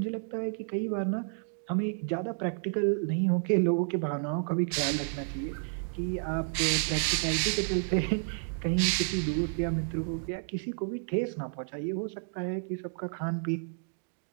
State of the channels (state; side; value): silent; left; digital silence